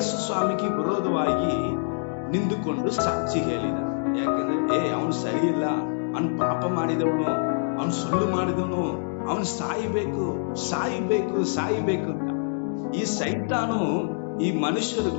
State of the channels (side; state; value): right; silent; digital silence